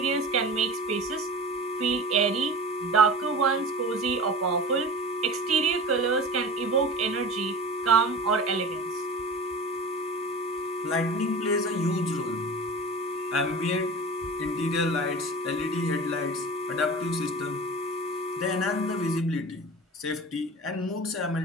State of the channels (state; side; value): normal; both; correlation 0.34